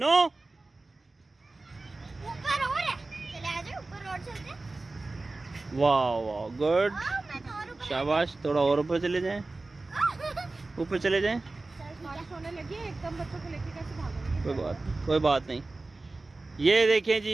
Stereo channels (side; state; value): left; quieter; 3.3 dB